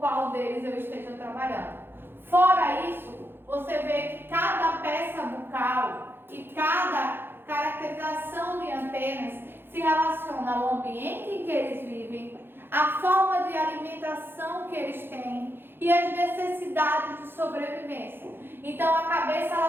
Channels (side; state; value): left; late; 0.10 ms